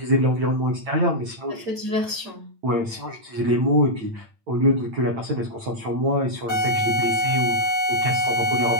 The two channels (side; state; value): left; late; 9.0 ms